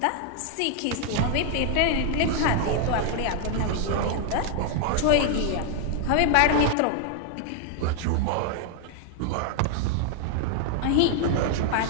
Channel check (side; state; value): both; different; correlation 0.00